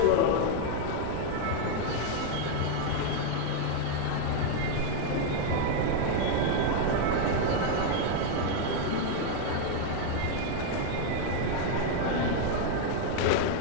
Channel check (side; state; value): both; different; correlation 0.00